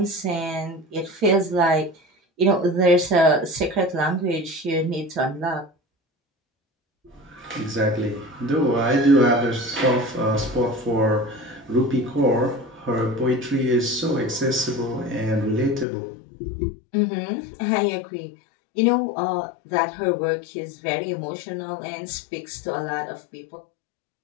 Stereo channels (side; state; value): right; drops out; at 15.9 s